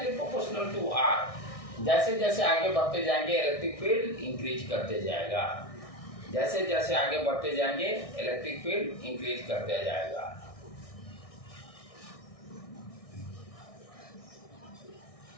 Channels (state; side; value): late; right; 1.6 ms